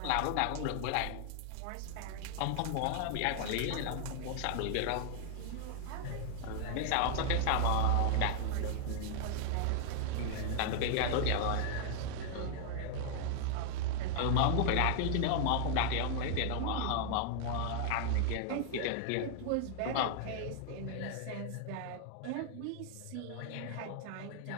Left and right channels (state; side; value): different; both; correlation 0.00